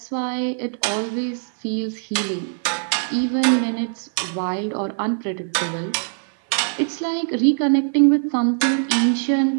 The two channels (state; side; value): silent; left; 60 dB below the other